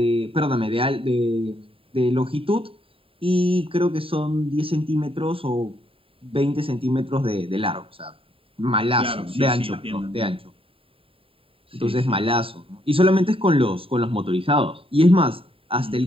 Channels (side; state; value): left; late; 0.27 ms